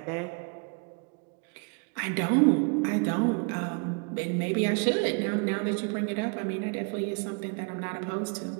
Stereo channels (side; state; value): left; quieter; 35.1 dB